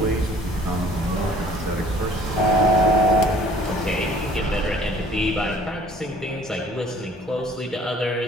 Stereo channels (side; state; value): both; normal; correlation 0.54